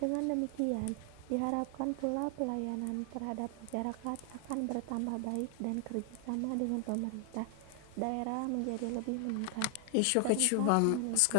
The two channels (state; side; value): different; both; correlation 0.00